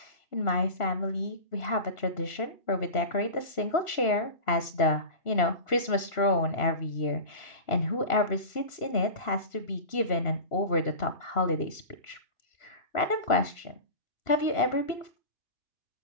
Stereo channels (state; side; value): late; right; 3.1 ms